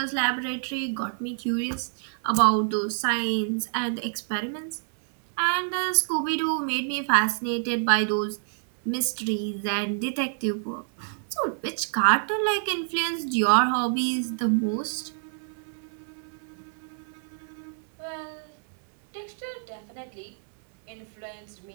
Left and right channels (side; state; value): left; silent; 60 dB below the other